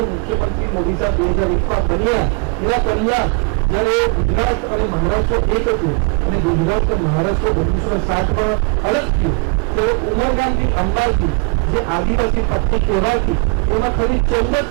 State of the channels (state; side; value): quieter; left; 32.3 dB